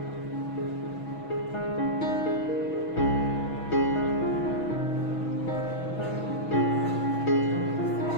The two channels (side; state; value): right; late; 6.2 ms